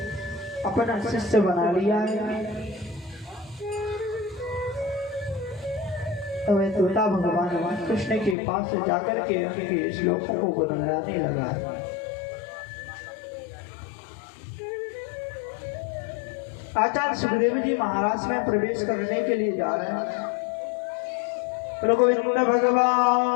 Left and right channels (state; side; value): drops out; right; at 8.3 s